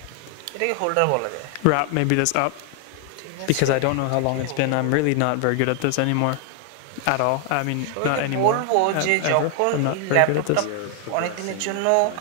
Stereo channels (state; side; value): different; both; correlation 0.00